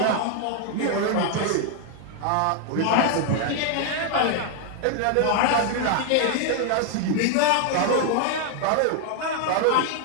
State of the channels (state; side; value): different; both; correlation 0.00